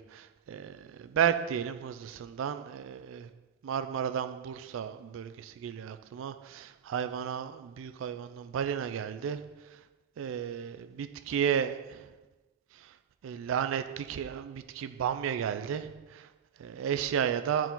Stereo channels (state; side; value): quieter; left; 8.0 dB